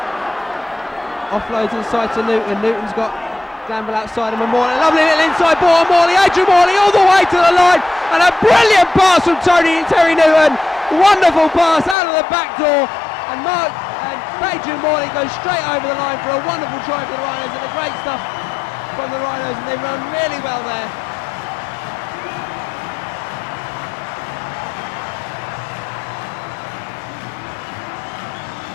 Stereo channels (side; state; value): right; drops out; at 12.0 s